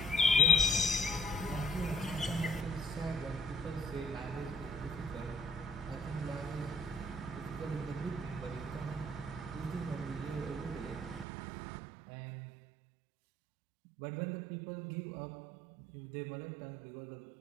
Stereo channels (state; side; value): drops out; left; at 11.2 s